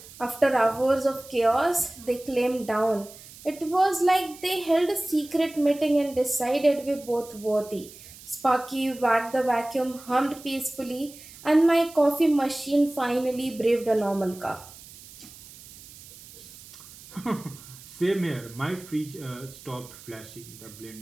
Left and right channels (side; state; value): right; noise; hiss, 19 dB below the sound